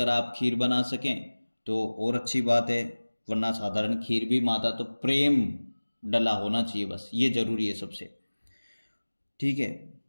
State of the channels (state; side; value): inverted; both; correlation -1.00